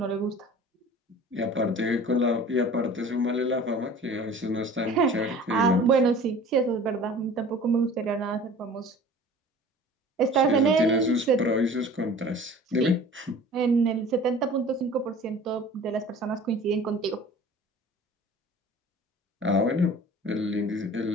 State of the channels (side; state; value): both; normal; correlation 0.44